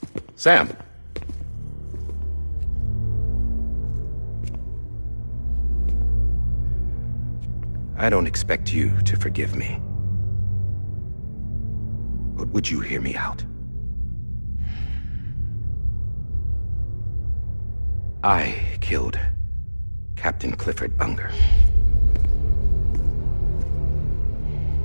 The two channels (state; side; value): inverted; both; correlation -1.00